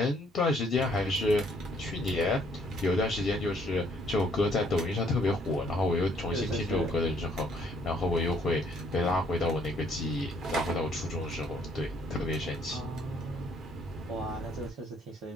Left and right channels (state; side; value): normal; both; correlation 0.65